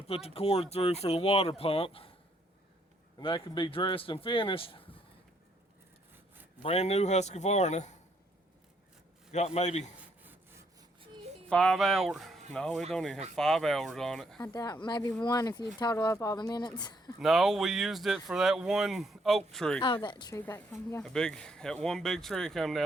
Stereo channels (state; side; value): normal; both; correlation 0.71